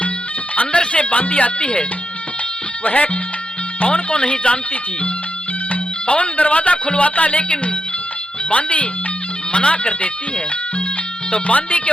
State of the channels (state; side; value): normal; both; correlation 0.84